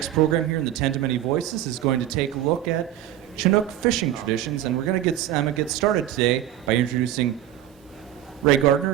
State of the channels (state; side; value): quieter; left; 12.1 dB